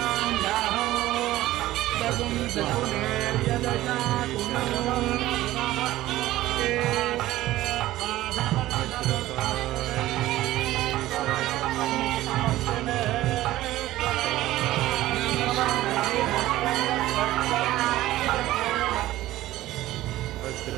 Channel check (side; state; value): left; quieter; 15.7 dB